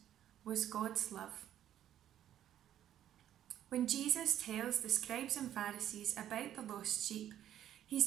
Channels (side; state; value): left; quieter; 11.3 dB